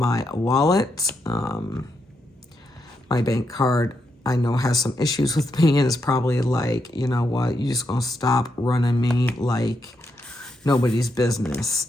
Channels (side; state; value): both; normal; correlation 0.82